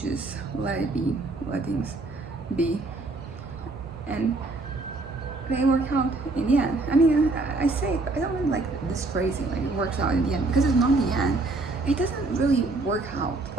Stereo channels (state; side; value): quieter; left; 3.3 dB